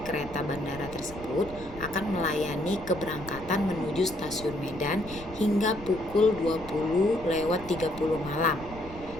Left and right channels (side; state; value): left; noise; rumble, 15 dB below the sound